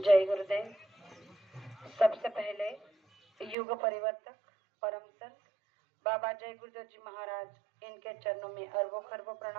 गुरुदेव। सबसे पहले युग परिवर्तक परम संत बाबा जय गुरुदेव जी महाराज इनके चरणों में अरबों खरबों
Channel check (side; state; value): left; drops out; at 3.6 s